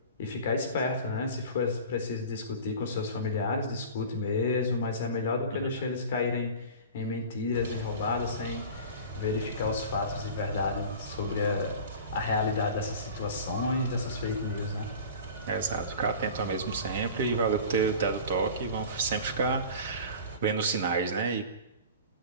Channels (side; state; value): both; inverted; correlation -0.38